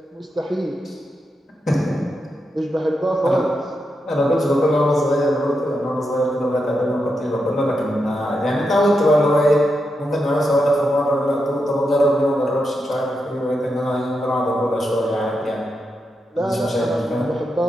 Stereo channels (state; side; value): normal; both; correlation 0.85